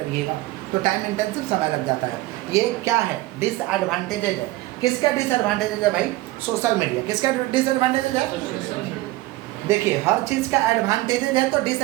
तो टाइम इंटेंसिव समय लग जाता है। ये क्या है? डिसएडवांटेजेज है। किसका डिसएडवांटेजेज है भाई? Social media. किसका डिसएडवांटेजेज है? देखिए, हर चीज़ का एडवांटेजेज है तो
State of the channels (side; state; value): left; quieter; 18.5 dB